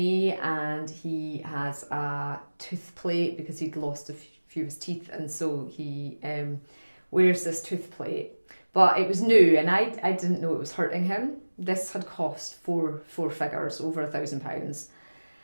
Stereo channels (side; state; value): both; inverted; correlation -1.00